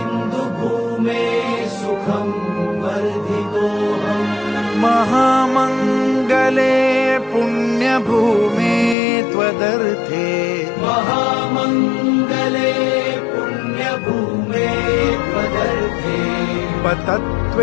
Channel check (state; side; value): drops out; right; at 9.0 s